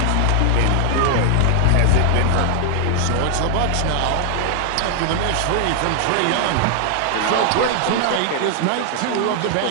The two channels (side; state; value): both; different; correlation 0.00